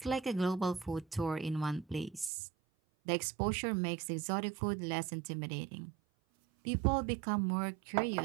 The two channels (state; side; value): drops out; left; at 2.3 s